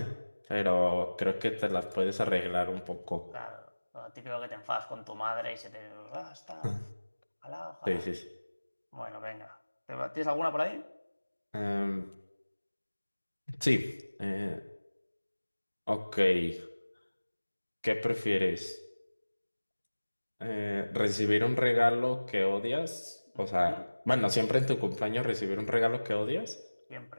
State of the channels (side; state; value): both; inverted; correlation -1.00